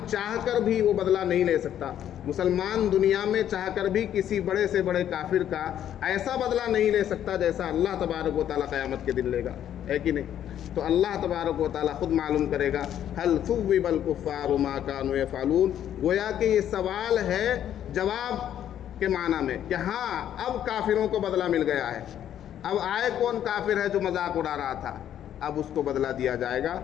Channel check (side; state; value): right; quieter; 10.5 dB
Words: چاہ کر بھی وہ بدلہ نہیں لے سکتا، مسلمان دنیا میں چاہ کر بھی کسی بڑے سے بڑے کافر کا ایسا بدلہ نہیں لے سکتا جیسا اللہ تبارک و تعالیٰ قیامت کے دن لے گا، ہے کہ نہیں؟ تو اللہ تبارک و تعالیٰ خود معلوم کرے گا۔ هل ثوب الکفار ما كانوا يفعلون، گویا کہ یہ سوال ہے جواب کے معنی میں کہ ہاں اب کافروں کو بدلہ مل گیا ہے، اب آئے کون کافر ہے جو مذاق اڑا رہا تھا، اب اس کو بدلہ دیا جائے گا،